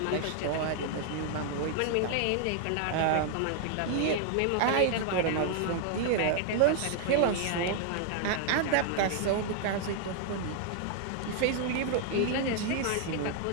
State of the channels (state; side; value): different; both; correlation 0.00